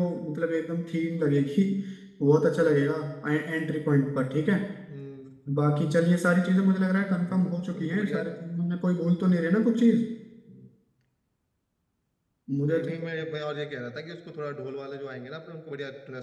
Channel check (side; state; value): both; identical; correlation 1.00